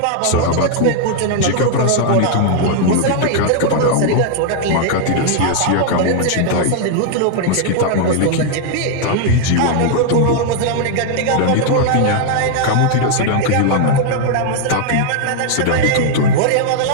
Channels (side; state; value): both; different; correlation 0.00